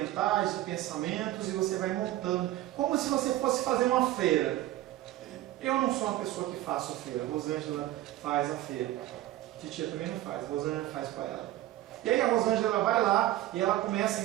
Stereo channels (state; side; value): quieter; left; 15.0 dB